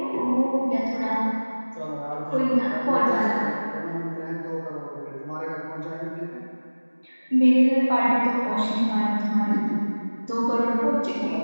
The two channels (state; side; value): inverted; both; correlation -1.00